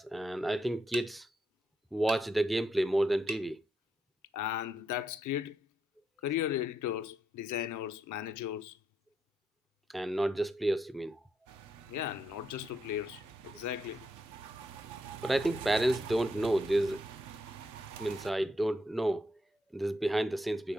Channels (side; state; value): both; normal; correlation 0.80